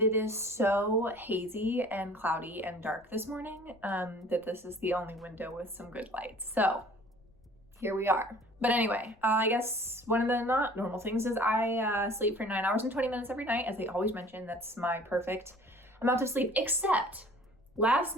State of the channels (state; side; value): noise; left; rumble, 29 dB below the sound